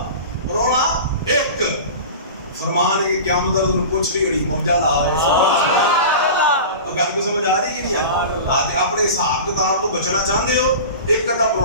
پرونا 1 فرمان ہے کہ قیامت تک پوچھ رہی گڑی موجہ لا رہے گل کو سمجھ آ رہی کہ نہیں آتی اپنے حساب کتاب تو بچنا چاہتے ہو ایک کتا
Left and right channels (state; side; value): inverted; both; correlation -0.33